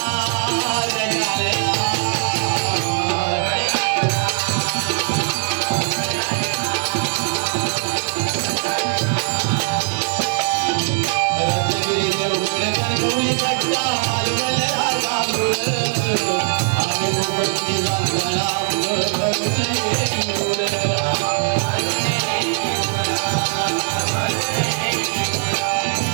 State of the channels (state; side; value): silent; left; 66 dB below the other